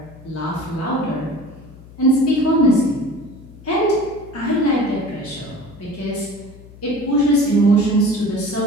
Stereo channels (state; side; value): noise; left; hum, 20 dB below the sound